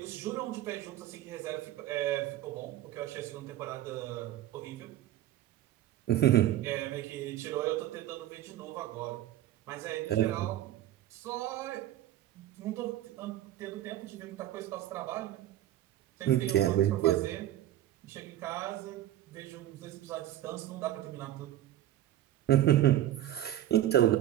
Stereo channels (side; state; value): left; quieter; 13.1 dB